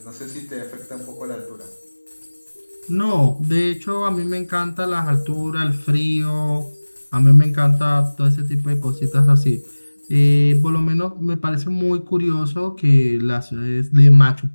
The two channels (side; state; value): both; inverted; correlation -1.00